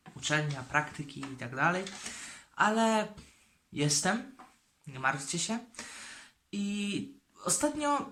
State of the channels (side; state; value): both; identical; correlation 1.00